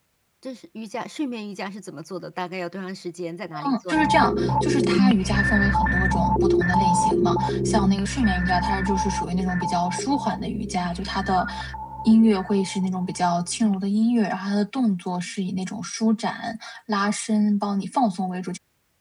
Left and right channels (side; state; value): both; identical; correlation 1.00